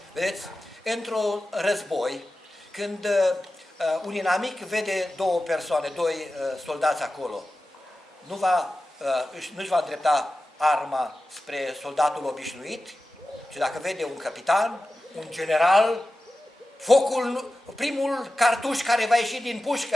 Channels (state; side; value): normal; both; correlation 0.94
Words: Vedeți, într-un război, când un inamic vede două persoane, doi soldați acolo, nu-și va îndrepta arma spre soldatul obișnuit, ci dacă vede un capitan, un general, primul cartuș care va ieși din